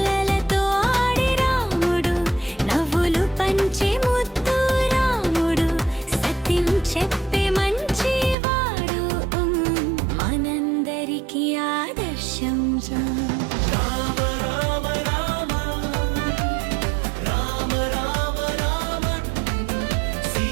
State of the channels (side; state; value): left; drops out; at 8.3 s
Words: ఆడే రాముడు, నవ్వులు పంచే ముద్దు రాముడు, సత్యం చెప్పే మంచివాడు, మనందరికీ ఆదర్శం. రామ రామ రామ రామ రామ రామ